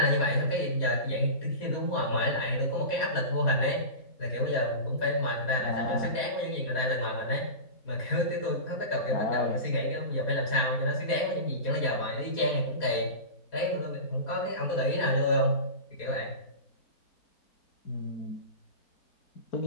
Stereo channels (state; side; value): late; right; 4.2 ms